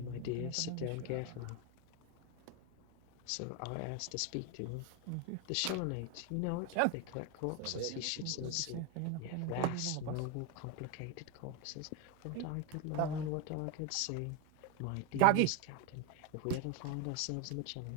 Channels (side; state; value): both; different; correlation 0.02